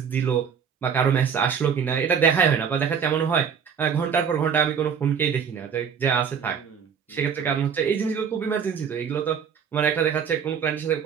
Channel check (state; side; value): quieter; left; 7.1 dB